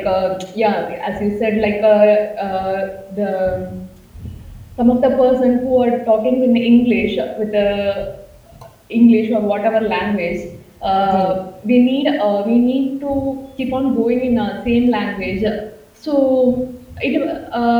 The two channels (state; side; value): identical; both; correlation 1.00